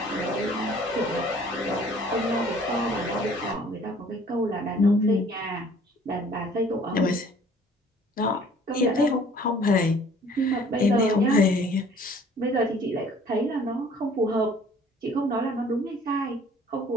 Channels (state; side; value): normal; both; correlation 0.54